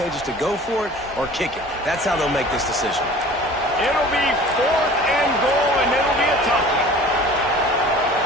to go for it or kick it? That's how they'll make this decision. It'll be 4th and goal, and it'll be a tough one.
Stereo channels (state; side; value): normal; both; correlation 0.44